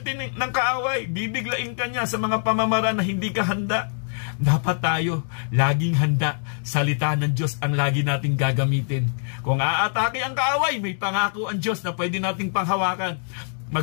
ng kaaway, bibiglain ka niya sa mga pamamaraan na hindi ka handa. Dapat tayo laging handa. Salita ng Diyos ang lagi nating gagamitin. Kung aatake ang kaaway, may pangako ang Diyos na pwede nating panghawakan.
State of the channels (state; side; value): silent; right; digital silence